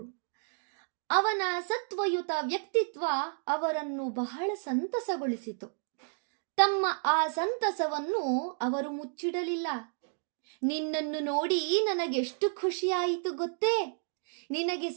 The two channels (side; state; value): left; silent; digital silence